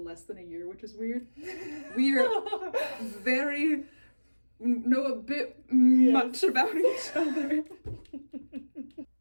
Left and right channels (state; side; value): inverted; both; correlation -1.00